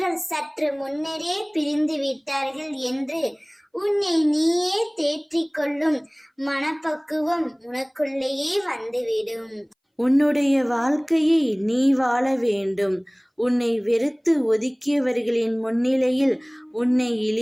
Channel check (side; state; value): both; identical; correlation 1.00